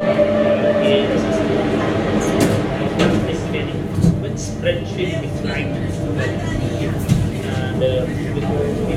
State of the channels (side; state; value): both; identical; correlation 1.00